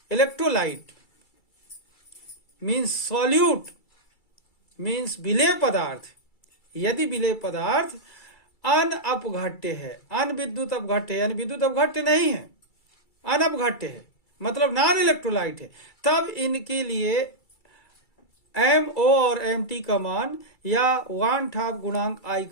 इलेक्ट्रोलाइट मीन्स सॉल्यूट मीन्स विलेय पदार्थ, यदि विलेय पदार्थ अनअपघट्य है, अनविद्युत अपघट्य यानी विद्युत अपघट्य नहीं है, अनअपघट्य है, मतलब नॉन इलेक्ट्रोलाइट है, तब इनके लिए एम ओ और एम टी का मान या वन हाफ गुणांक आई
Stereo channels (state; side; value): late; right; 2.3 ms